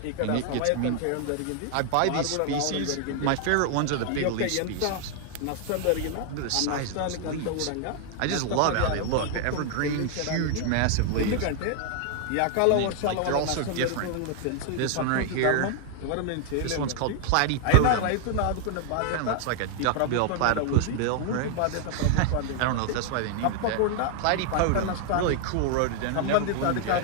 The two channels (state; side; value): different; both; correlation 0.00